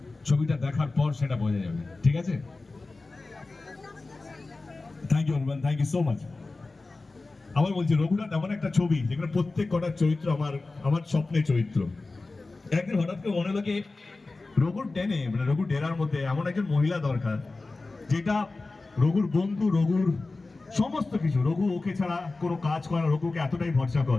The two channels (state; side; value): quieter; right; 3.4 dB